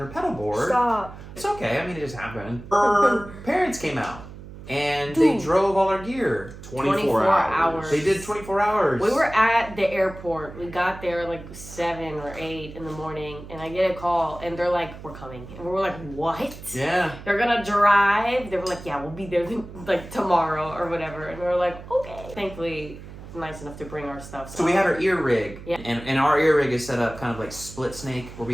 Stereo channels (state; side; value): noise; right; hum, 14 dB below the sound